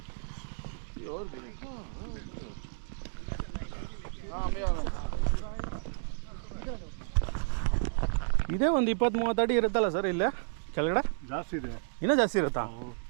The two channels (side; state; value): left; silent; digital silence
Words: और भी. हाँ मैं आ रहा हूँ. ಇದೇ ಒಂದು 20-30 ಅಡಿ ಇರುತ್ತಲ್ಲ ಸರ್ ಇಲ್ಲೇ ಕೆಳಗಡೆ? ಜಾಸ್ತಿ ಇದೆ. ಇನ್ನೂ ಜಾಸ್ತಿ ಇರುತ್ತಾ?